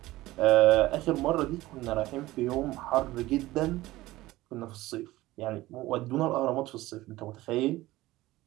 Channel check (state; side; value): quieter; left; 17.7 dB